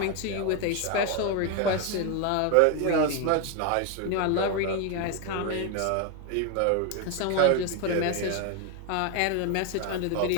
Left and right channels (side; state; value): both; different; correlation 0.01